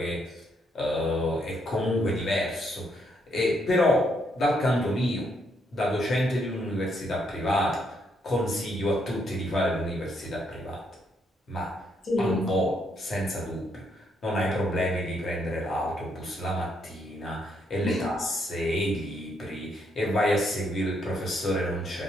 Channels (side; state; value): both; normal; correlation 0.74